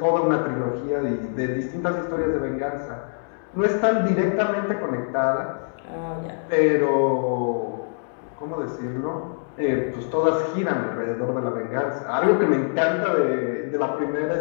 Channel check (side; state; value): right; silent; digital silence